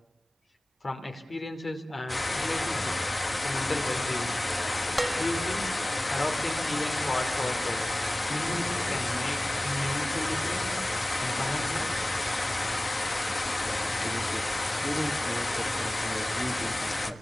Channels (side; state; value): both; normal; correlation 0.97